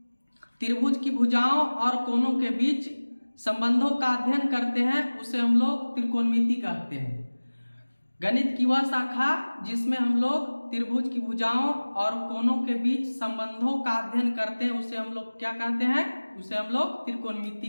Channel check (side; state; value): both; inverted; correlation -1.00